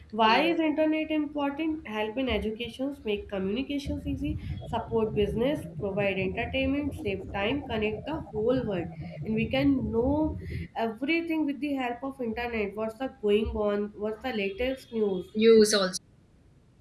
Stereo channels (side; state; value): both; identical; correlation 1.00